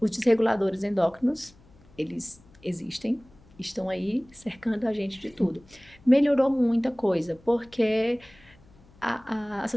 desreguladores endócrinos, eles existem, estão aí cercando a gente de tudo. Melhorou muita coisa, porque a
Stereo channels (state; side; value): noise; left; hum, 27 dB below the sound